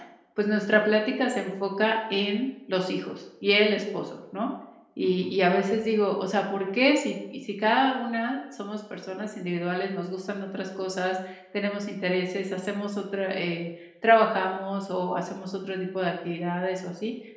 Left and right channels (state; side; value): identical; both; correlation 1.00